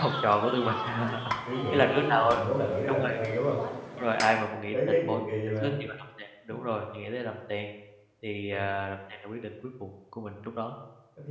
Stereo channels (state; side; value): identical; both; correlation 1.00